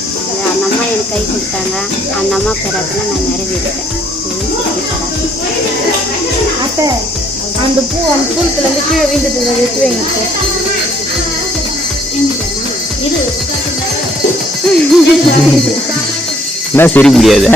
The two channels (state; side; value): normal; both; correlation 0.65